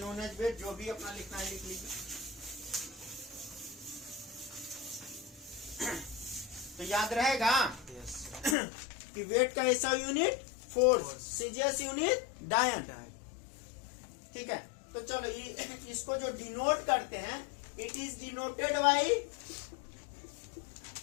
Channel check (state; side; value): drops out; right; at 8.6 s